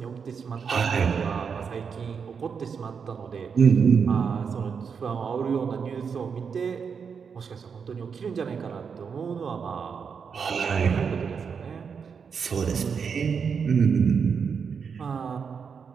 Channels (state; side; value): quieter; left; 6.3 dB